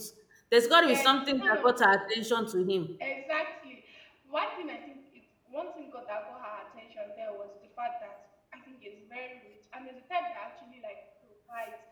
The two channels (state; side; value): identical; both; correlation 1.00